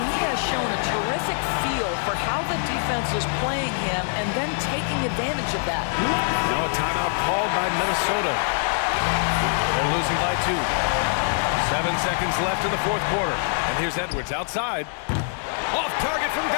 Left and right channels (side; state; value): right; silent; digital silence